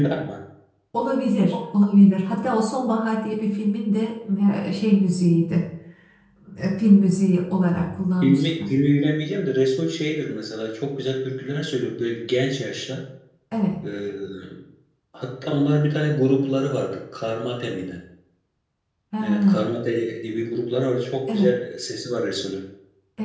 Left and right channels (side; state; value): both; identical; correlation 1.00